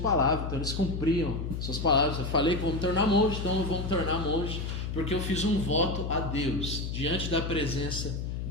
então eles cumpriam suas palavras. Eu falei que vou me tornar monge, então eu vou me tornar monge, porque eu fiz um voto a Deus, diante da presença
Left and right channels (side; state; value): left; noise; hum, 4 dB below the sound